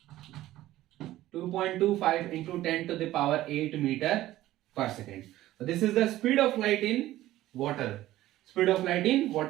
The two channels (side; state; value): left; quieter; 15.1 dB